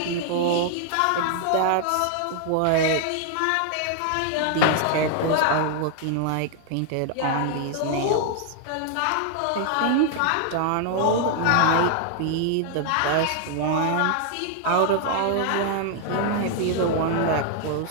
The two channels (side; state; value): both; different; correlation 0.00